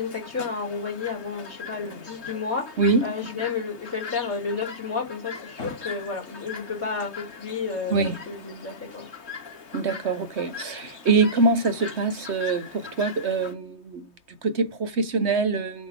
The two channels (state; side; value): late; left; 3.2 ms